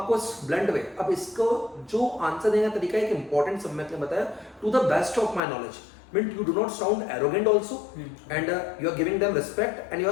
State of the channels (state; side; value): drops out; right; at 5.4 s